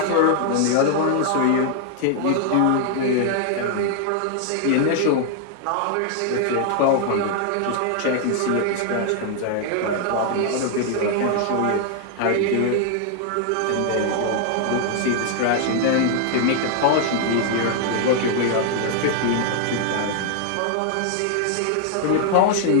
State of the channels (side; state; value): both; different; correlation 0.00